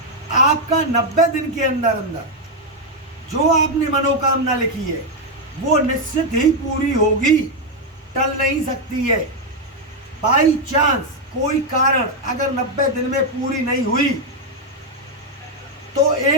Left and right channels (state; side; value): normal; both; correlation 0.02